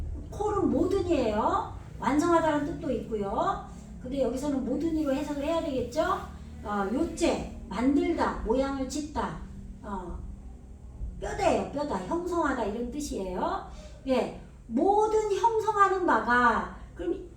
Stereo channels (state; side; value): identical; both; correlation 1.00